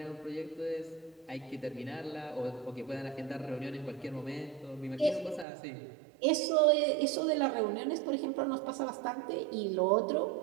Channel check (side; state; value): left; drops out; at 5.5 s